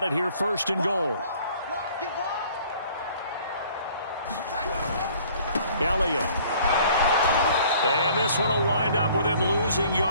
it here 1st and goal. Elliott. And this one will wind up with him losing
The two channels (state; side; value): inverted; both; correlation -0.55